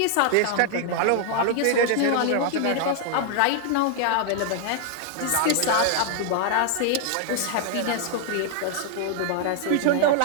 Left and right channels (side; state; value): both; different; correlation 0.00